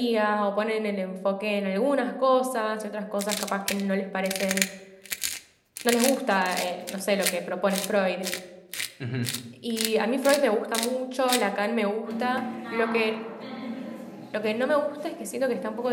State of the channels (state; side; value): identical; both; correlation 1.00